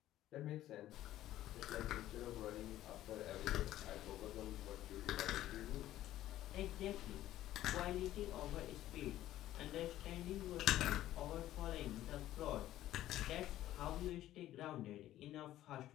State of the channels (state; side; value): quieter; right; 13.8 dB